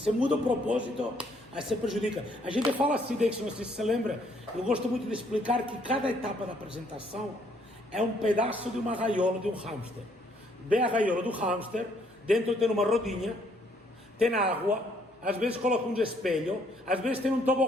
muda o propósito, aí você prejudica. A gente fala assim, Dixon, não sei se você lembra, eu gosto muito de explicar que cada etapa da apresentação é um pedaço de uma gaiola de um hamster. Vem a gaiola do hamster, dentro tem uma rodinha, tem água, às vezes coloca um espelho, às vezes tem um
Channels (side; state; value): both; normal; correlation 0.67